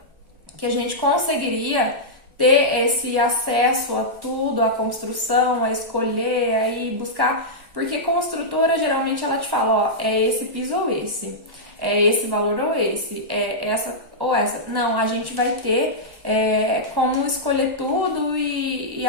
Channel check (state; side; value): late; left; 1.1 ms